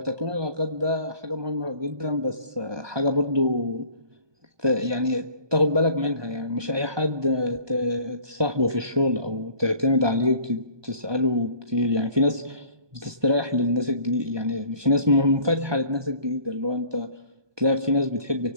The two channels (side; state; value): left; late; 1.2 ms